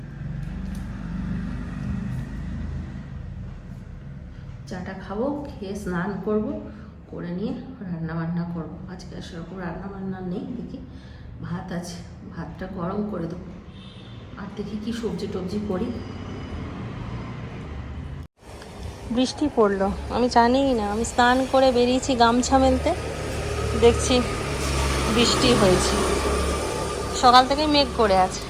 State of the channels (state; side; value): identical; both; correlation 1.00